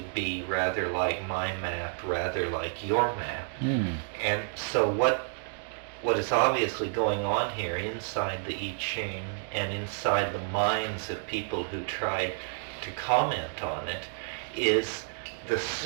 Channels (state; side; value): silent; left; 58 dB below the other